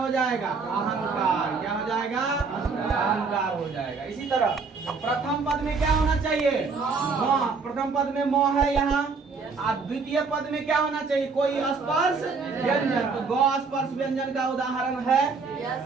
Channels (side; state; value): left; quieter; 4.7 dB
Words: जाएगा? अहंकार। क्या हो जाएगा? अहंकार हो जाएगा। इसी तरह प्रथम पद में क्या होना चाहिए? म। प्रथम पद में म है यहाँ। द्वितीय पद में क्या होना चाहिए? कोई स्पर्श व्यंजन। तो ग स्पर्श व्यंजन का उदाहरण